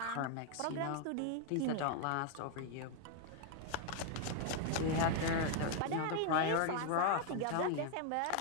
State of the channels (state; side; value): different; both; correlation 0.00